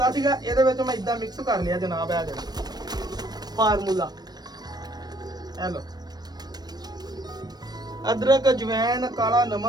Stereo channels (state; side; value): late; left; 0.19 ms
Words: ਸੀਗਾ, ਇਹਦੇ ਵਿੱਚ ਮੈਂ ਇਦਾਂ ਮਿਕਸ ਕਰ ਲਿਆ ਜਨਾਬ। ਇਹ ਜਿਹੜਾ ਫਾਰਮੂਲਾ, ਇਹ ਲੋ, ਅਦਰਕ, ਅਜਵੈਨ, ਕਾਲਾ